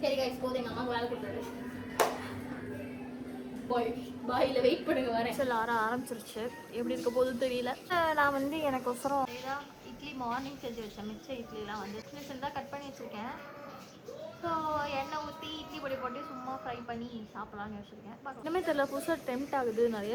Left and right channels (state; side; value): identical; both; correlation 1.00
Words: சரி கைஸ், போதும். எங்கள் அம்மாவுக்கு வேலை கொடுத்தாரு. பாயில் வெயிட் பண்ணுங்க, வரேன். சில ஆரம்பிச்சிருச்சு. எப்படி இருக்க போதும் தெரியல. நான் வந்து எனக்கு ஒசரம் இட்லி மார்னிங் செஞ்சு வச்சேன். மிச்ச இட்லிலாம் வந்து சின்ன சின்னதாக கட் பண்ணி வச்சுருக்கேன். ஸோ எண்ணெய் ஊற்றி இட்லி பொடி போட்டு சும்மா ஃப்ரை பண்ணி சாப்பிட்லான்னு வச்சுருக்கேன். இன்னுமே தெரியல, புதுசாக டெம்ட் ஆகுது